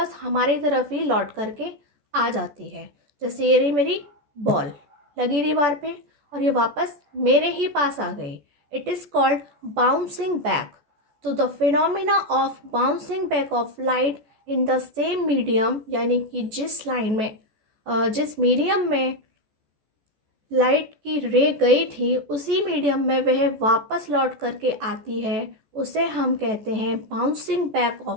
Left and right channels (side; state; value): left; late; 14 ms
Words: हमारी तरफ ही लौट करके आ जाती है। जैसे ये रही मेरी बॉल लगी दीवार पे और ये वापस मेरे ही पास आ गई। It is called bouncing back. तो the phenomena of bouncing back of light in the same medium, यानी कि जिस लाइन में, जिस मीडियम में लाइट की रे गई थी उसी मीडियम में वह वापस लौट करके आती है, उसे हम कहते हैं bouncing back